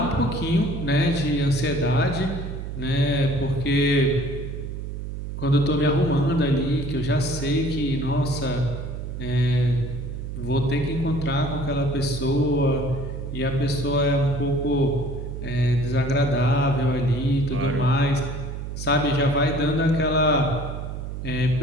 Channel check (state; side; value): noise; right; hum, 7 dB below the sound